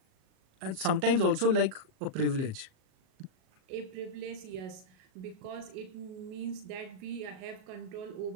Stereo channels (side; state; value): left; late; 37 ms